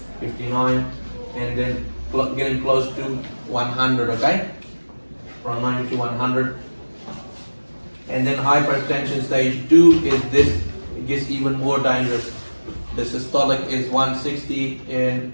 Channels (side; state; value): both; inverted; correlation -1.00